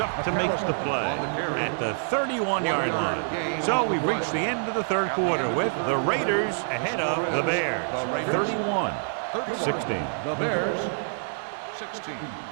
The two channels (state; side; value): silent; left; digital silence